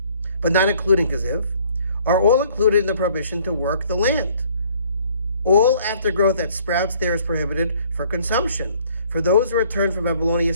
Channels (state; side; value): inverted; both; correlation -0.60